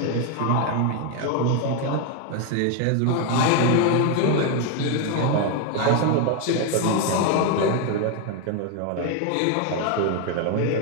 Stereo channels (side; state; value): both; different; correlation 0.01